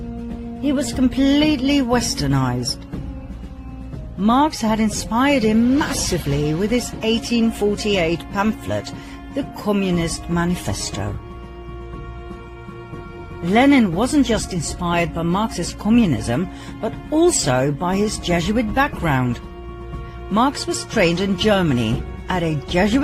He was completely westernized. Marx had inspired him massively with his 1848 pamphlet, the Communist Manifesto. Lenin wasn't just inspired by Marxist communism, but also by his Jesuit background. Marx was trained in Germany at a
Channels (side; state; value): both; identical; correlation 1.00